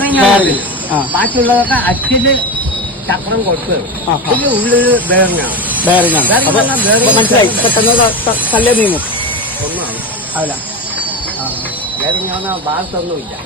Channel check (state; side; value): normal; both; correlation 0.21